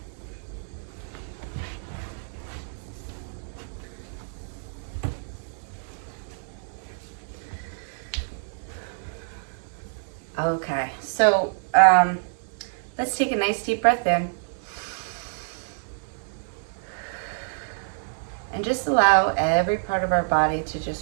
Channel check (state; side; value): silent; left; 56 dB below the other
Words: Okay, so let's take a nice deep breath in. And just allow every part of our body to